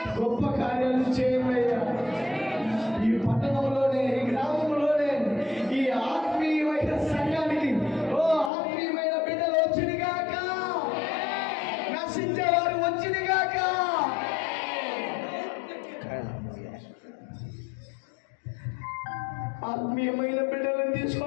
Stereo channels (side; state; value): right; drops out; at 8.5 s